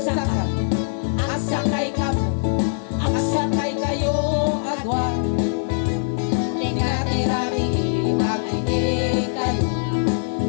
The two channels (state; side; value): silent; right; digital silence